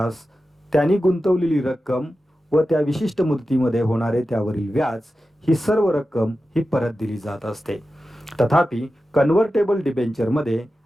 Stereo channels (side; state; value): both; normal; correlation 0.93